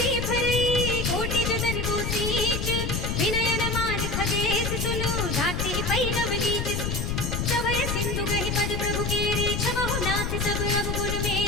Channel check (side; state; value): left; noise; rumble, 1 dB below the sound